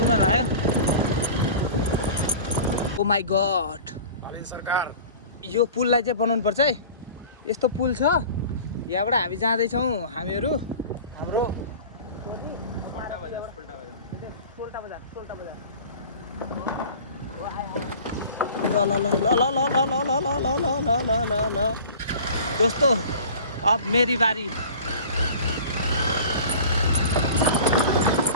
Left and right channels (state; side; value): inverted; both; correlation -0.41